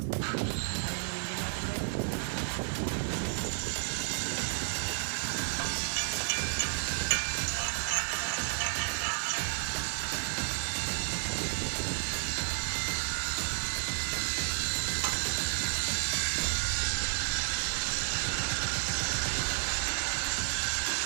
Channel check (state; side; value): silent; left; digital silence